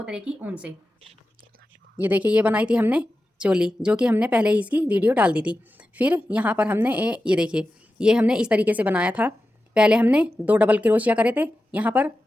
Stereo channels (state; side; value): normal; both; correlation 0.92